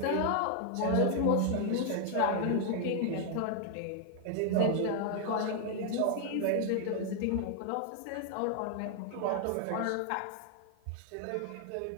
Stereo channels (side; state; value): both; different; correlation 0.00